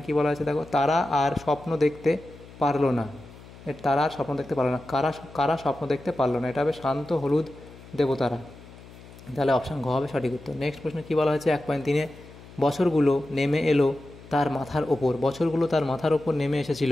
কি বলা আছে দেখো, তারা আর স্বপ্ন দেখতে পারলো না। তারা আর স্বপ্ন দেখতে পারলো না, কারা স্বপ্ন দেখতে পারলো না, এটা হবে শান্ত হলুদ দেবতারা। তাহলে অপশান ঘ হবে সঠিক উত্তর। নেক্সট প্রশ্ন কী বলা হয়েছে, 1.3-এ বছরগুলো নেমে এলো তার মাথার ওপর, বছরগুলো তার মাথার ওপর নেমে এসেছিল।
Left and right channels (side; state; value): left; noise; hum, 19 dB below the sound